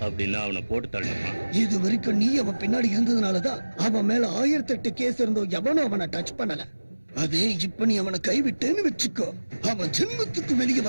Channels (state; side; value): inverted; both; correlation -1.00